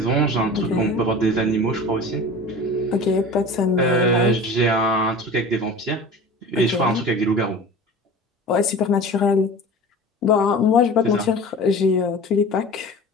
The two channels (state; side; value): normal; both; correlation 0.37